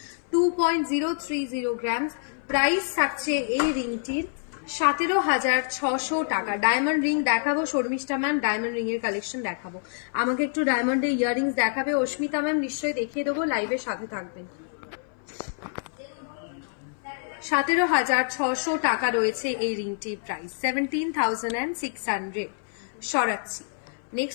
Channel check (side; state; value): right; silent; 59 dB below the other